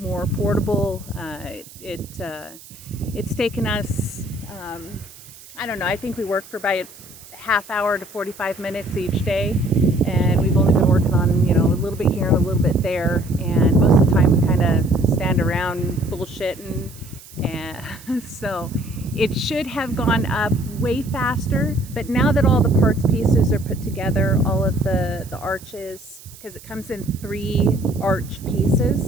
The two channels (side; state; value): right; noise; hiss, 20 dB below the sound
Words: portable. It's taken us, I don't know, I think we worked for about a half hour to 45 minutes each day, and we've only been working on, a little bit here and a little bit there, and most of the time we kind of stand around bullshitting, and so it should have gone up way faster. But now that all the parts pieces are put together, all of the arches, because it comes in 3 arch